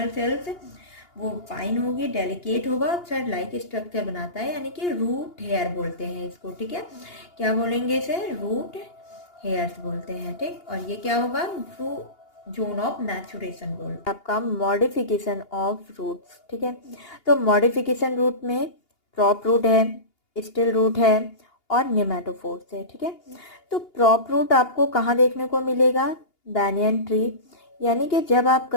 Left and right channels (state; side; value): late; right; 2.8 ms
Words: सेल्स वो फाइन होगी, डेलिकेट होगा, थ्रेड लाइक स्ट्रक्चर बनाता है, यानी कि रूट हेयर बोलते हैं इसको, ठीक है। क्या बोलेंगे इसे? रूट हेयर्स बोलते हैं, ठीक। और ये क्या होगा? जोन ऑफ मैचुरेशन बोल आपका मॉडिफिकेशन ऑफ रूट्स, ठीक है। तो मॉडिफिकेशन रूट में प्रॉप रूट है, स्टिल रूट है और नेमेटोफोर्स है, ठीक है। तो प्रॉप रूट आपको कहाँ देखने को मिलेगा? बैनियन ट्री, यानी कि जब आप